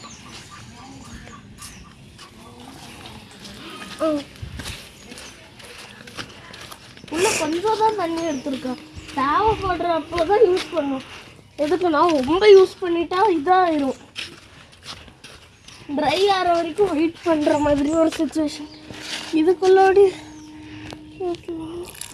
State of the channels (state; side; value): identical; both; correlation 1.00